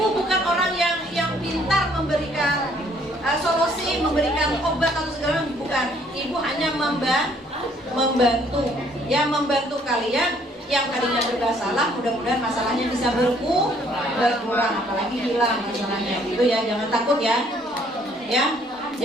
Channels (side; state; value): both; normal; correlation 0.63